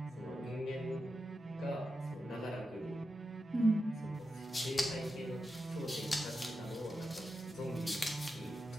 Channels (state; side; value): normal; both; correlation 0.89